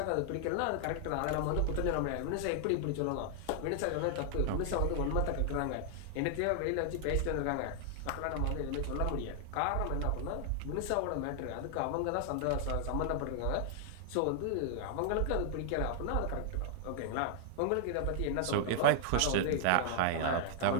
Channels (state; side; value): different; both; correlation 0.00